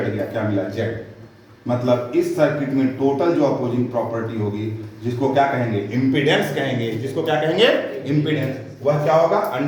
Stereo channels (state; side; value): identical; both; correlation 1.00